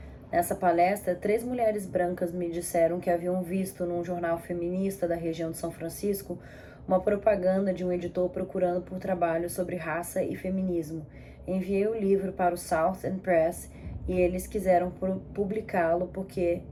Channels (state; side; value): identical; both; correlation 1.00